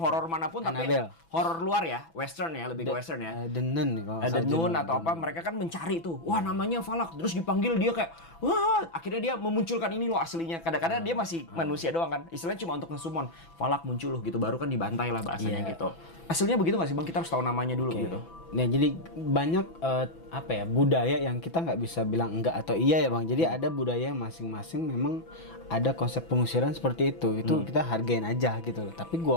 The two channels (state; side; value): late; right; 6.0 ms